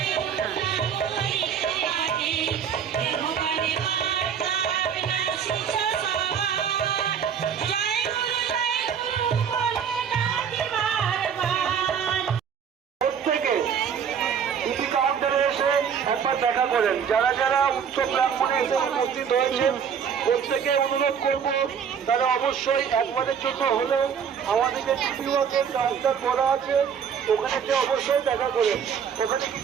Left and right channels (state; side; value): quieter; left; 7.6 dB